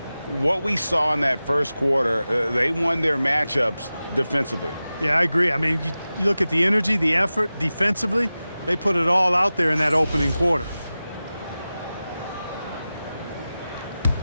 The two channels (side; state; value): both; inverted; correlation -0.95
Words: What we saw in that first quarter, they won their matchups defensively. Yeah, I agree. I mean, you look at the energy, the effort defensively, they put it all out there in that opening quarter.